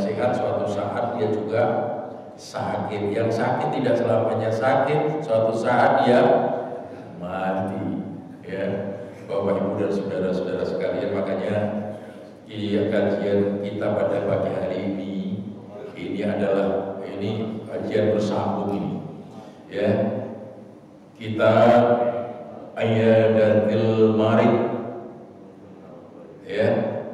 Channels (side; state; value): both; identical; correlation 1.00